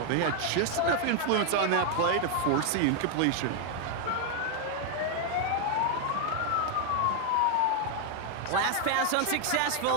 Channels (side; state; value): both; different; correlation 0.00